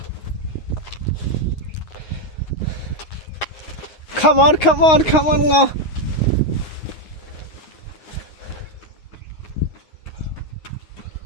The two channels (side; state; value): right; late; 9.6 ms